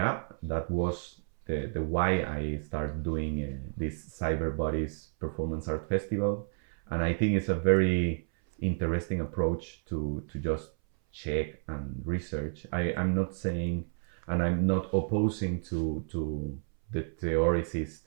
that was the why I started doing this Cyber Bodies Performance Art Festival. And I think it's a very interesting approach to just check and research. I'm not saying, and I'm not opposing to the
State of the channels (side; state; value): left; silent; 57 dB below the other